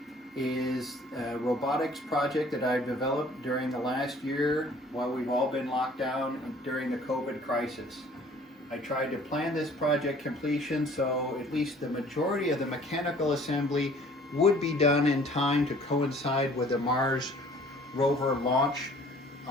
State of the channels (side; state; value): both; normal; correlation 0.54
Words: is a robotics project that I've developed during the last year while we've all been locked down during the COVID crisis. I tried to plan this project completion so at least the majority of the mechanical assembly would be done in time to coincide with the Mars rover launch